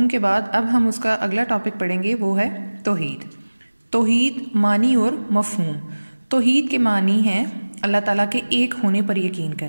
کے بعد اب ہم اس کا اگلا ٹاپک پڑھیں گے، وہ ہے توحید۔ توحید معنی اور مفہوم۔ توحید کے معنی ہیں اللہ تعالیٰ کے ایک ہونے پر یقین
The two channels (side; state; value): both; inverted; correlation -1.00